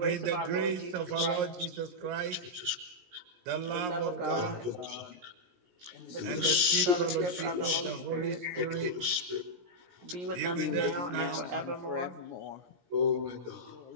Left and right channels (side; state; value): left; late; 17 ms